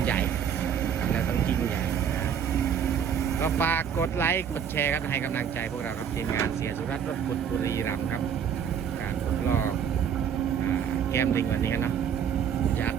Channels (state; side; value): quieter; left; 8.0 dB